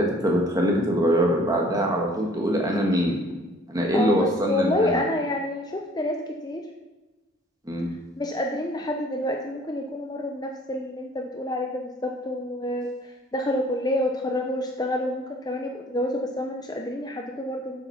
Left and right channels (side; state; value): both; normal; correlation 0.54